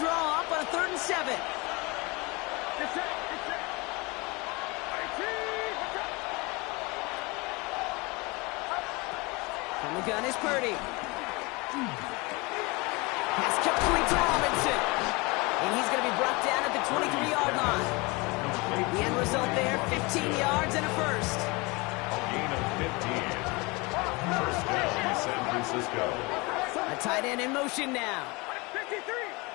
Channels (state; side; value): quieter; right; 26.0 dB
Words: up on a 3rd and 7. From the gun is Purdy. Pass complete to Robinson. And he's going to be brought down at the 23-yard line. The end result there, 15 yards and a first. A gain of 15. First down, San Francisco. A tight end in motion now.